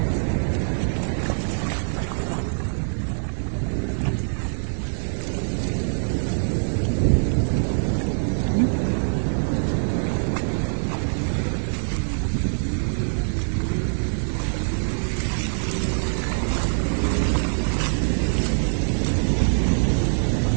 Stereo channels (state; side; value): silent; left; 63 dB below the other